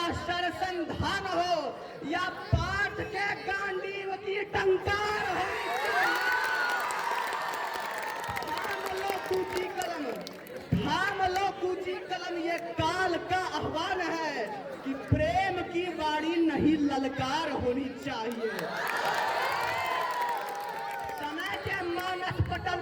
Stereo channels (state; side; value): identical; both; correlation 1.00